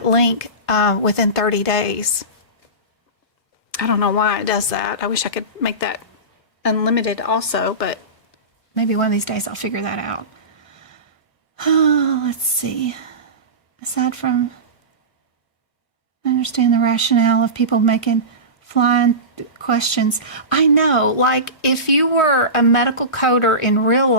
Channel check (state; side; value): late; right; 1.5 ms